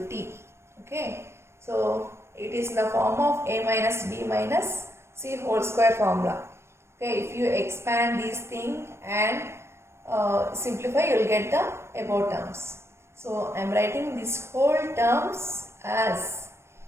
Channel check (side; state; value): left; late; 0.13 ms